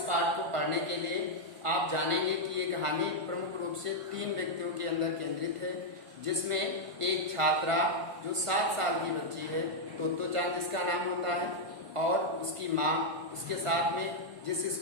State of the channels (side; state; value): left; late; 1.5 ms